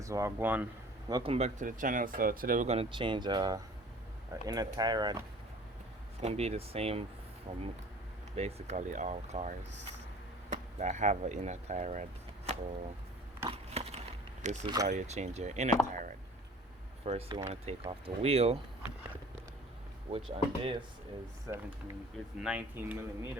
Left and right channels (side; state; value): both; normal; correlation 0.47